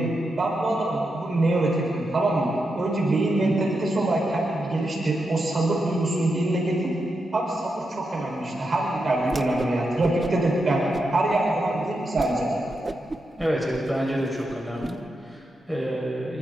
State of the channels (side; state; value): both; normal; correlation 0.86